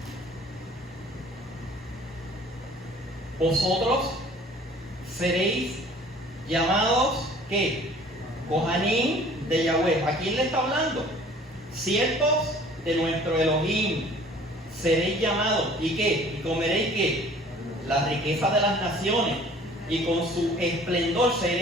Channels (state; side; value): normal; both; correlation 0.51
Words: Vosotros seréis llamados, ¿qué? Kohanim de Yahweh. ¿A quién le está hablando? Siervos de nuestro Elohim. Seréis llamados, ¿y qué? ¿Y comeréis qué? La riqueza de las naciones. Y con su esplendor